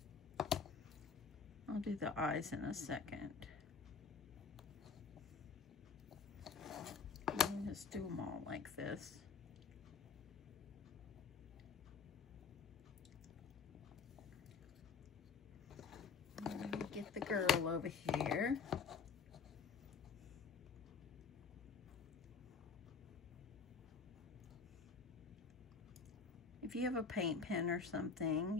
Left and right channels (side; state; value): right; quieter; 5.3 dB